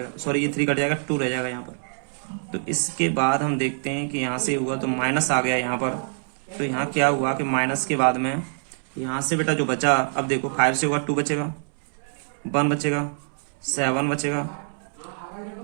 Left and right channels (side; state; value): left; silent; 62 dB below the other